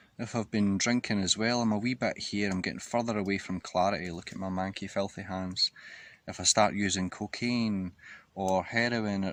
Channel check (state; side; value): identical; both; correlation 1.00